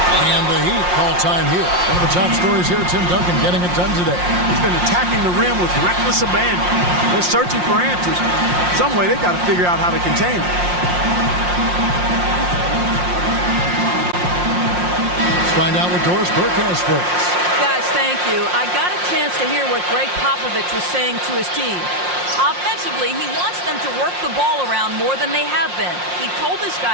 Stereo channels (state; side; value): late; left; 5.6 ms